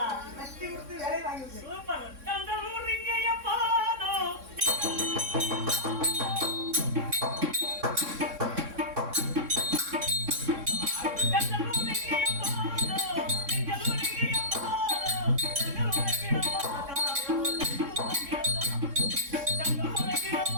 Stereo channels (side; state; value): left; late; 3.6 ms